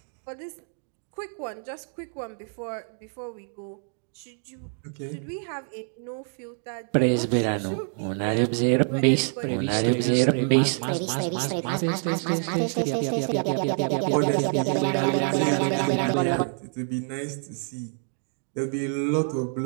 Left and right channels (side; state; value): left; silent; 56 dB below the other